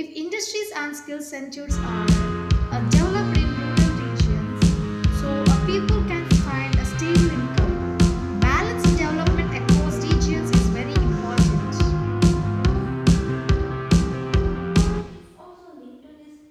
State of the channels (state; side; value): identical; both; correlation 1.00